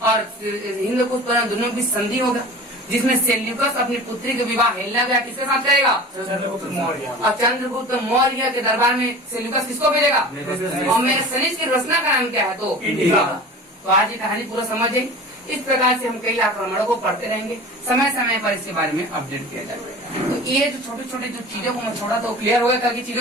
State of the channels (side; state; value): both; normal; correlation 0.38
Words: और हिंदकुश दोनों की संधि होगा, जिसमें सेल्यूकस अपनी पुत्री के विवाह हेलेना किसके साथ करेगा? चंद्रगुप्त मौर्य। और चंद्रगुप्त मौर्य के दरबार में सेल्यूकस किसको भेजेगा? और मेरे सनीज की रचना का नाम क्या है? तो इंडिया। तो आज ये कहानी पूरा समझे। इस प्रकार से हम कई आक्रमणों को पढ़ते रहेंगे, समय समय पर इसके बारे में अपडेट किया जाएगा। तो ये जो छोटे छोटे जो चीजों को मैं छोड़ा तो क्लियर हो गया कल की